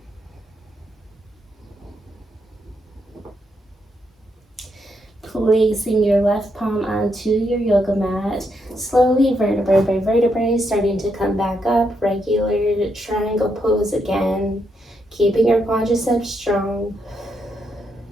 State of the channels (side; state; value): both; normal; correlation 0.79